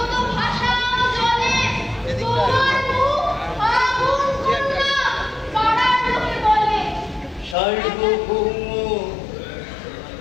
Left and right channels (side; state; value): right; drops out; at 7.6 s